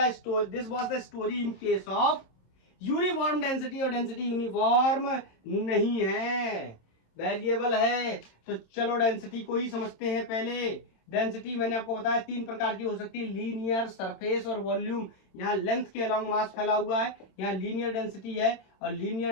was the story in case of uniform density, और डेंसिटी यूनिफॉर्म नहीं है, वेरिएबल है। तो चलो डेंसिटी को ही समझते हैं पहले। डेंसिटी मैंने आपको बताया 3 प्रकार की हो सकती है, लीनियर, सरफेस और वॉल्यूम। यहाँ लेंथ के अलोंग मास फैला हुआ है, यहाँ लीनियर डेंसिटी है, और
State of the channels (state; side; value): late; right; 27 ms